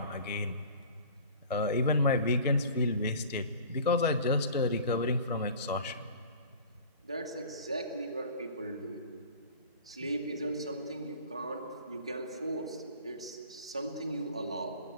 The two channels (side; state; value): both; inverted; correlation -0.42